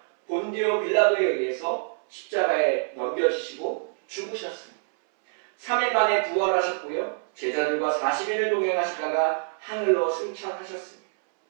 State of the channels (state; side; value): silent; left; 61 dB below the other